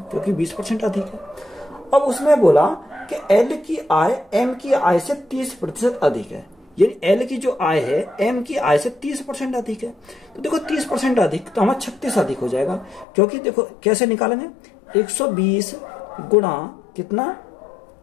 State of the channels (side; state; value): right; drops out; at 13.1 s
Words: क्योंकि 20% अधिक है। अब उसने बोला कि एल की आय एम की आय से 30% अधिक है, यानी एल की जो आय है एम की आय से 30% अधिक है। तो देखो 30% अधिक तो हमारा 36 अधिक हो जाएगा, क्योंकि देखो कैसे निकालेंगे 120 गुणा कितना